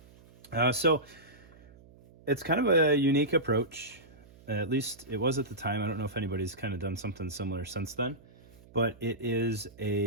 right. So it's kind of a unique approach. At least it was at the time. I don't know if anybody's kind of done something similar since then, but it is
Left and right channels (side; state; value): right; noise; hum, 24 dB below the sound